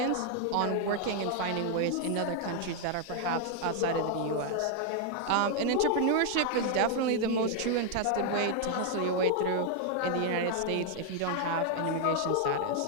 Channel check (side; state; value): both; different; correlation 0.00